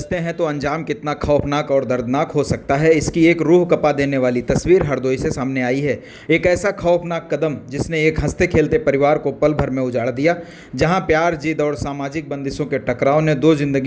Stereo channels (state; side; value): identical; both; correlation 1.00